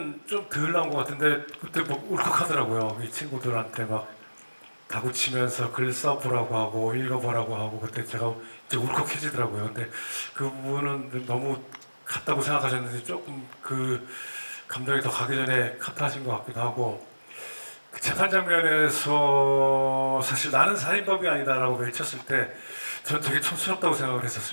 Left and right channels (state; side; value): inverted; both; correlation -1.00